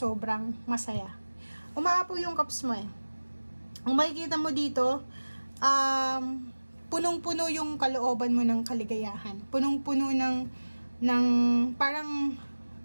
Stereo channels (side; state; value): both; inverted; correlation -1.00